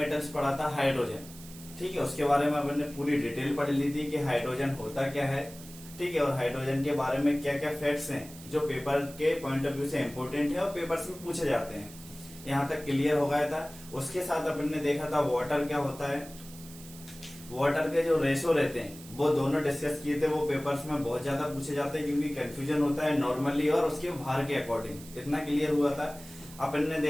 पढ़ा था हाइड्रोजन। ठीक है, उसके बारे में अपन ने पूरी डिटेल पढ़ ली थी कि हाइड्रोजन होता क्या है। ठीक है, और हाइड्रोजन के बारे में क्या क्या फैक्ट्स हैं जो पेपर के पॉइंट ऑफ व्यू से इम्पोर्टेंट है और पेपर्स में पूछे जाते हैं। यहाँ तक क्लियर हो गया था। उसके साथ अपन ने देखा था वाटर क्या होता है। वाटर के जो रेशो रहते हैं वो दोनों डिस्कस किए थे। वो पेपर्स में बहुत ज्यादा पूछे जाते हैं क्योंकि कंफ्यूजन होता है नॉर्मली और उसके भार के अकॉर्डिंग। इतना क्लियर हुआ था। अपन ने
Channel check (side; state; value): right; noise; hiss, 18 dB below the sound